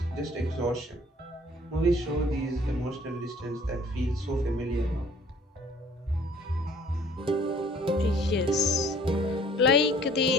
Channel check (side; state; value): both; normal; correlation 0.55